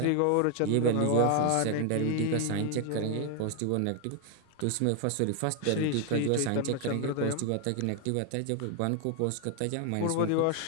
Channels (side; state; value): both; different; correlation 0.00